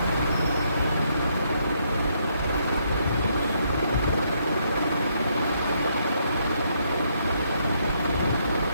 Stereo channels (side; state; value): both; inverted; correlation -0.74